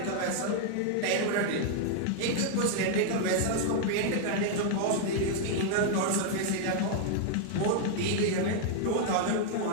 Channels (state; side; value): different; both; correlation 0.00